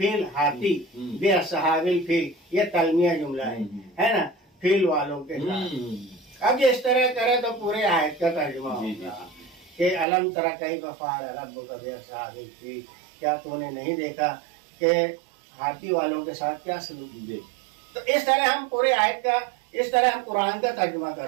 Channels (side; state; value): left; drops out; at 10.1 s